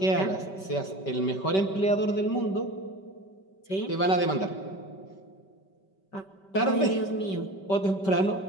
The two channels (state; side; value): late; right; 5.2 ms